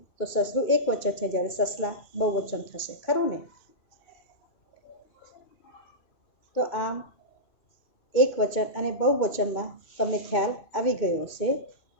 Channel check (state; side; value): late; right; 2.2 ms